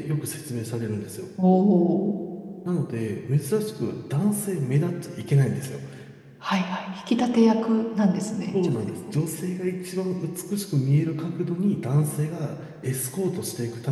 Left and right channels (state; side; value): identical; both; correlation 1.00